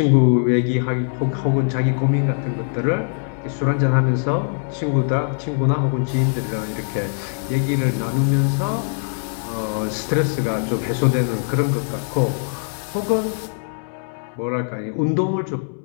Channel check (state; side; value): silent; right; digital silence